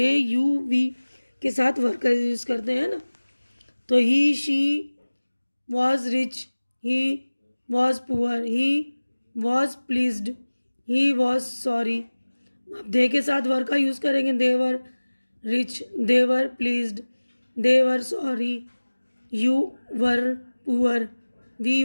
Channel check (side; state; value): both; inverted; correlation -1.00